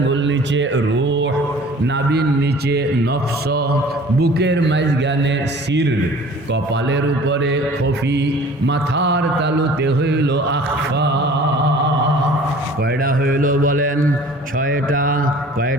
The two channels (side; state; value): both; normal; correlation 0.47